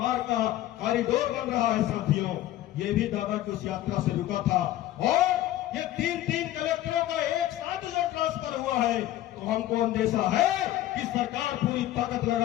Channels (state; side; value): quieter; right; 14.1 dB